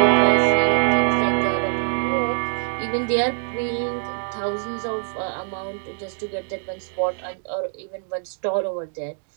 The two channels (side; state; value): left; silent; 63 dB below the other